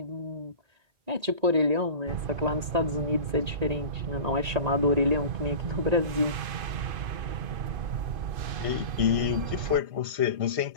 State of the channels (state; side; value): late; left; 1.8 ms